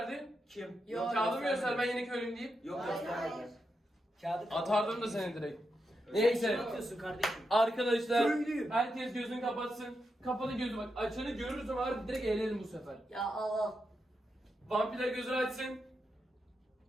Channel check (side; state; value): both; normal; correlation 0.86